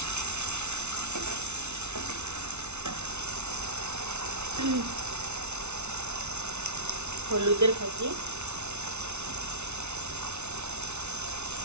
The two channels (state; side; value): late; left; 0.81 ms